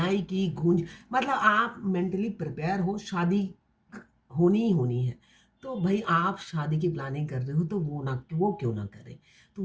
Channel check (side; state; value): both; identical; correlation 1.00